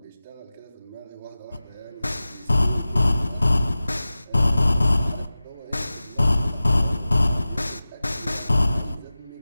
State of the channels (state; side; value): inverted; both; correlation -0.96